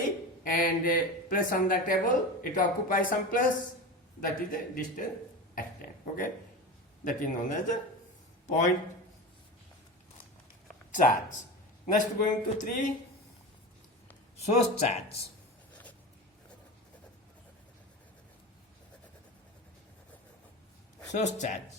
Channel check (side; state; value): both; normal; correlation 0.27